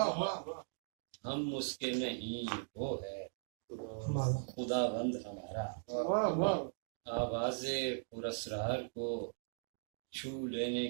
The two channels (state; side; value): silent; left; digital silence